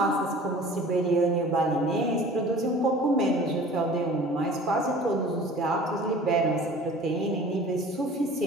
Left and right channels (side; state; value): both; normal; correlation 0.44